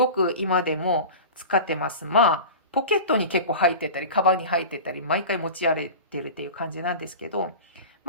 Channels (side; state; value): both; inverted; correlation -0.32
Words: く今でも使ってます。まあ、ポケットに結構入ってたり、カバンに入ってたり、毎回持ち歩いてるっていう感じなんですけど、